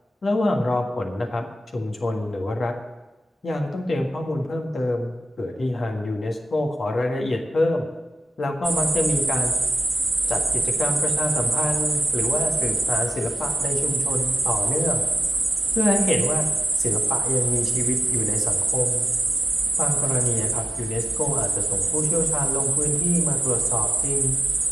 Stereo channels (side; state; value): both; normal; correlation 0.90